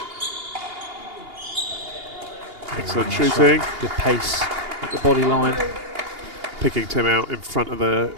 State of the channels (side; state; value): left; late; 2.8 ms